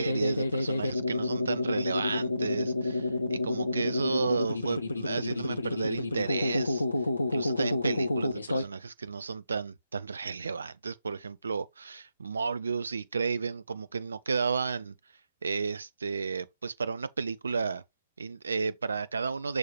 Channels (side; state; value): both; inverted; correlation -0.85